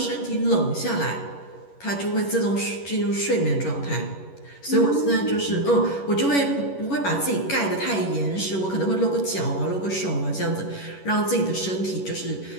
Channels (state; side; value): late; right; 11 ms